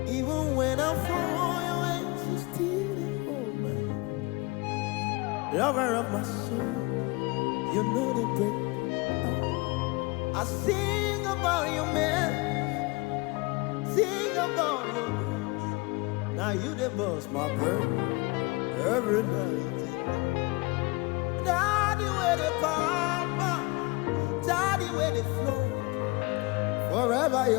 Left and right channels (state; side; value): quieter; right; 25.1 dB